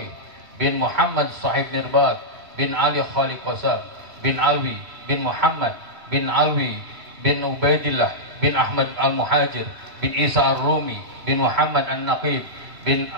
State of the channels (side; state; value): left; late; 3.0 ms